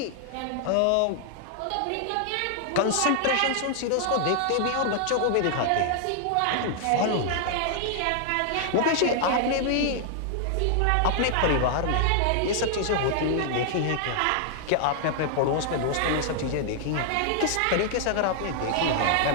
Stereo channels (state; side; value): different; both; correlation 0.00